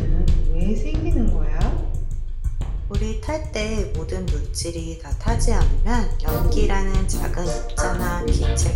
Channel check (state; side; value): identical; both; correlation 1.00